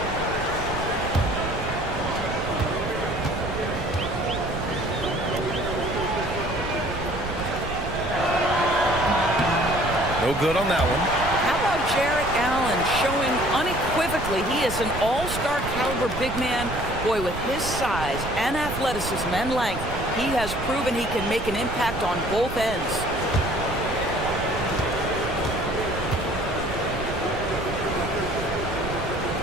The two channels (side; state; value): right; noise; rumble, 8 dB below the sound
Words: No good on that one. How about Jared Allen showing unequivocally he is an all-star caliber big man? Boy, with his size and athleticism and length, he has proven he can make an impact on both ends.